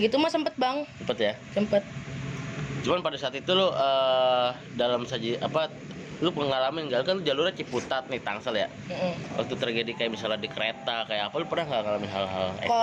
mah sempet bang. Cepet ya. Sempet. Cuman pada saat itu lo dalam saji apa, lu pengalaman nggak kan, lu jalurnya Ciputat nih Tangsel ya. Waktu terjadi kayak misalnya di kereta kayak apa, lu pernah nggak ngalamin hal-hal ekstrim?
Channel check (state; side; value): identical; both; correlation 1.00